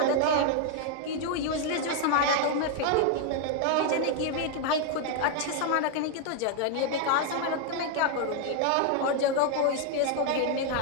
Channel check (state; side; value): different; both; correlation 0.00